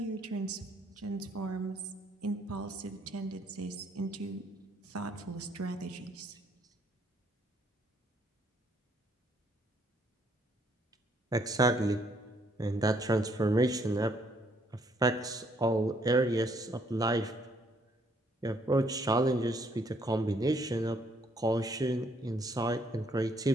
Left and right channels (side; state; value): both; normal; correlation 0.67